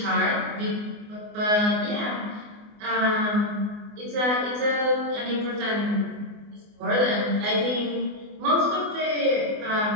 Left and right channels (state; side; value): late; left; 24 ms